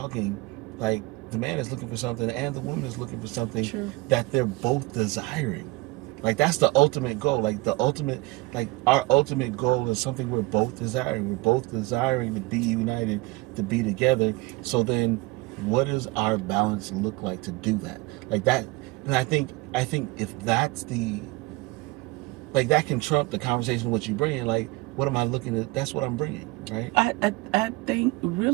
like, the man is looking for something and the woman is looking for something that they're both desiring. Like, that's the ultimate goal. Like, our ultimate goal is something we're both desiring. We're both desiring to be united, to be together. So then, what does our balance look like to do that? Like that, and I think if that's that can trump the conversation what you bring. Like, what am I looking at? That's what I'm bringing, right? I think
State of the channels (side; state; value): left; quieter; 21.9 dB